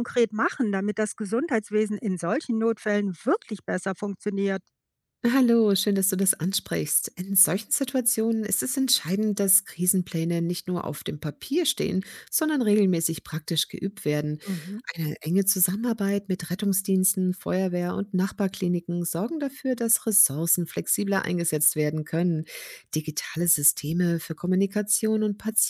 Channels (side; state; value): both; identical; correlation 1.00